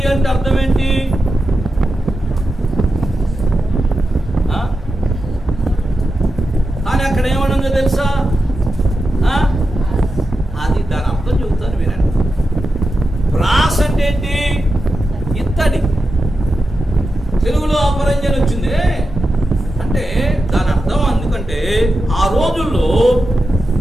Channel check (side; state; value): both; normal; correlation 0.90